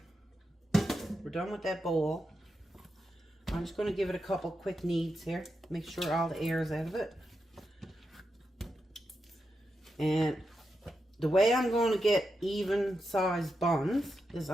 We're done with that bowl. I'm just going to give it a couple quick kneads here. Make sure all the air is out of it. And the way I'm going to get even sized buns is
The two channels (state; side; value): normal; both; correlation 0.87